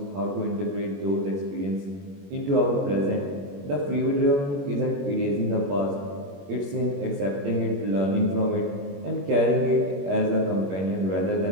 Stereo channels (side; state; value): left; late; 21 ms